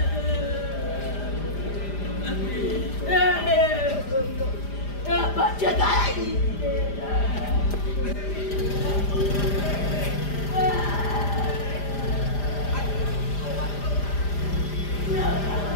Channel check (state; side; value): late; right; 5.0 ms